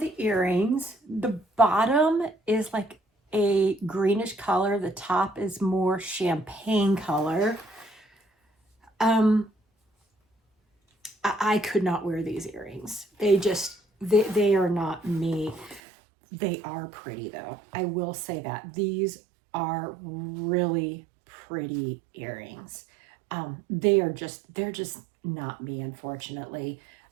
earrings. The bottom is like a greenish color. The top is more champagne color. I could not wear these earrings. They are not me. They are pretty though. I will say that. These are really pretty earrings. They're just not me, unfortunately.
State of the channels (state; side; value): drops out; left; at 15.8 s